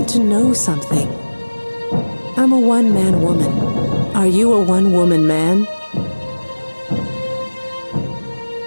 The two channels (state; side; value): inverted; both; correlation -1.00